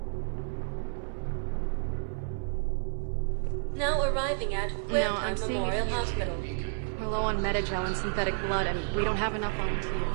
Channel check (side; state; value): left; silent; 57 dB below the other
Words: Now arriving at Huerta Memorial Hospital. We're low on Metagel and synthetic blood, and we don't have enough